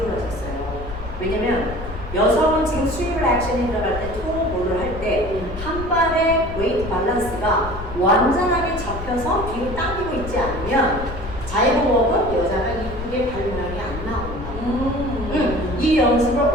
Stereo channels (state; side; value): noise; left; rumble, 10 dB below the sound